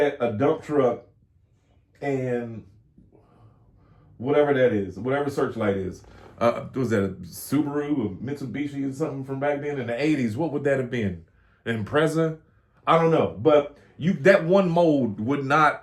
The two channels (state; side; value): identical; both; correlation 1.00